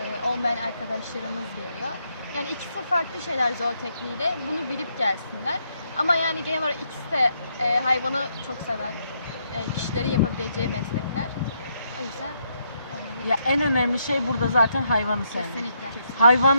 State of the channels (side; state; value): both; inverted; correlation -0.76